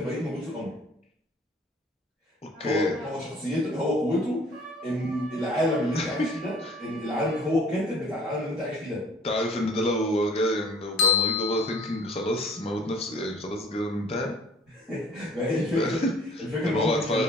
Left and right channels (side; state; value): both; normal; correlation 0.53